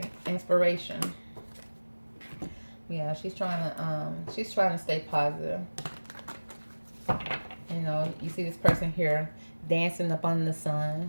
inspiration. Yeah, she's trying to stay positive. You know, you see this person here dancing up under the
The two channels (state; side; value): inverted; both; correlation -1.00